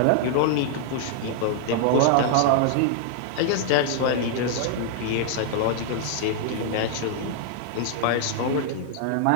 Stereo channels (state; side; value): different; both; correlation -0.01